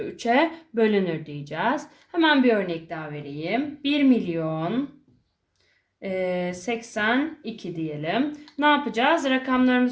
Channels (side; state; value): both; identical; correlation 1.00